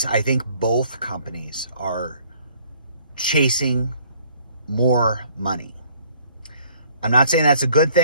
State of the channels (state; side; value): inverted; both; correlation -0.60